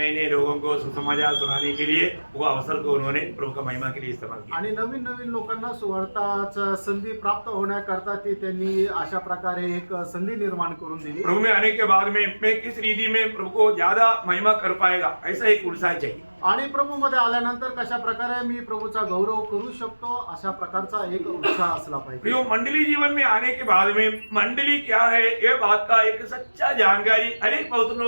नए लोगों को सुसमाचार सुनाने के लिए वो अवसर को उन्होंने प्रभु का महिमा के लिए इस्तेमाल किया। आणि नवीन नवीन लोकांना सुवार्ताचा संधी प्राप्त होण्याकरता ती त्यांनी अशा प्रकारे एक संधी निर्माण करून दिली। प्रभु में आने के बाद में मैं किस रीति में प्रभु को ज्यादा महिमा कर पाएगा, ऐसा एक उत्साह चाहिए। आणि प्रभू मध्ये आल्यानंतर कशा प्रकारे मी प्रभूचा गौरव करू शकतो अशा प्रकारचा एक उत्साह असला पाहिजे। प्रियो, मंडली जीवन में आने के बाद में मंडली क्या है ये बात का एक सच्चा जानकारी अनेक पवित्र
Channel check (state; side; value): inverted; both; correlation -1.00